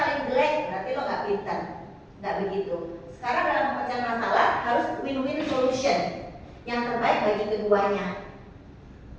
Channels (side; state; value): both; identical; correlation 1.00